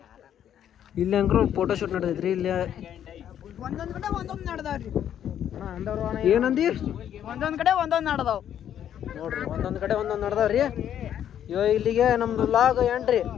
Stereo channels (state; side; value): quieter; right; 10.0 dB